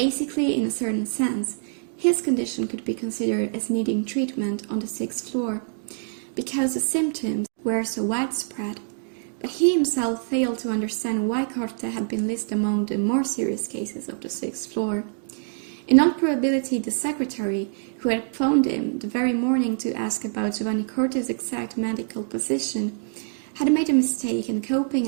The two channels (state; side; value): silent; left; 58 dB below the other